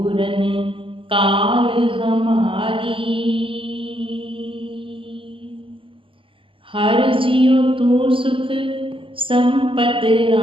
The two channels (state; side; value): late; left; 0.25 ms